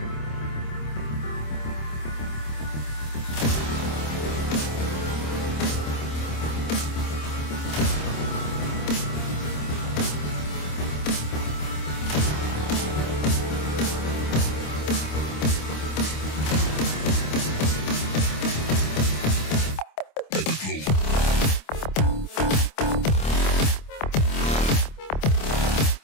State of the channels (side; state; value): right; late; 26 ms